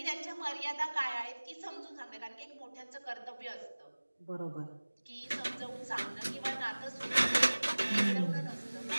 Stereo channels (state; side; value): inverted; both; correlation -1.00